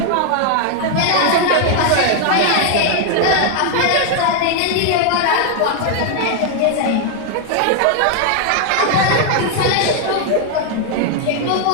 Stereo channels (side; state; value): both; different; correlation 0.00